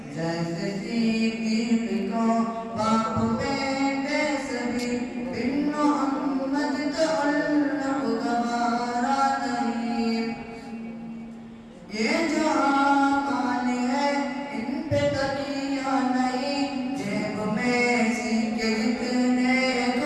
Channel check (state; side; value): identical; both; correlation 1.00